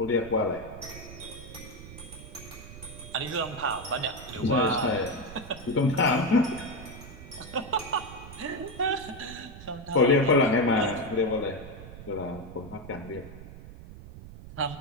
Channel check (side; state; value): right; noise; rumble, 14 dB below the sound